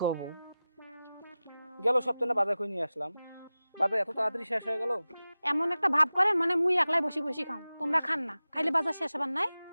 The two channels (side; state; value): both; inverted; correlation -0.96